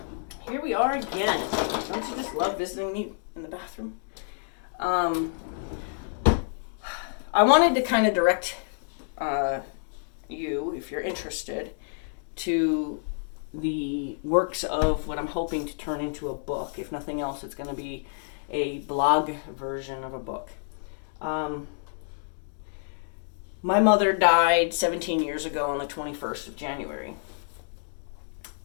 Here we are again. Don't you just love visiting me in the bathroom? I wanted to kind of direct you, if you're interested, to the works of what I'm hoping to turn into a book. If nothing else, it's going to be a blog version of a book. My mother died 17 years ago on the 21st of January.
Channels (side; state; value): right; silent; digital silence